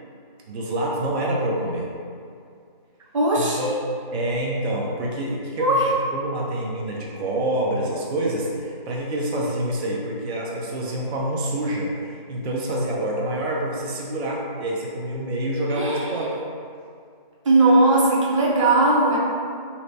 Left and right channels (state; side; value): inverted; both; correlation -0.40